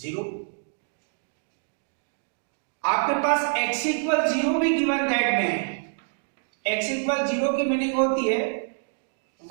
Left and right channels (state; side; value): silent; left; digital silence